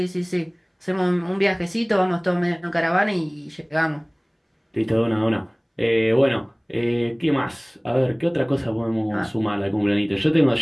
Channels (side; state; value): both; identical; correlation 1.00